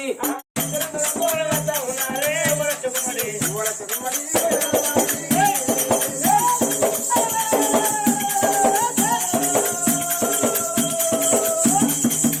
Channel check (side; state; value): both; identical; correlation 1.00